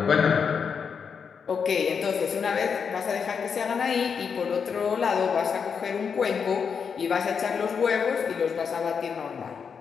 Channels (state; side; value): quieter; right; 6.4 dB